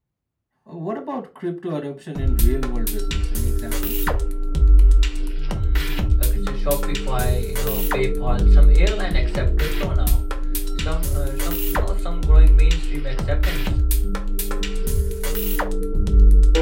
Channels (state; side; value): identical; both; correlation 1.00